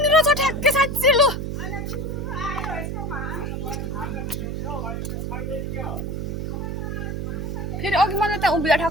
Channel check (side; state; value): right; noise; hum, 3 dB below the sound